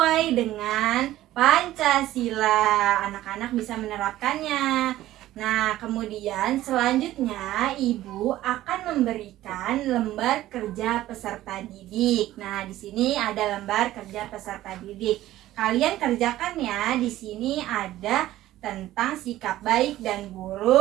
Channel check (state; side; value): quieter; left; 14.8 dB